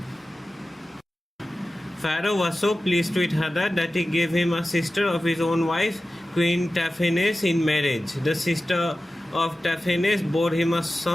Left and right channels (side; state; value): both; normal; correlation 0.95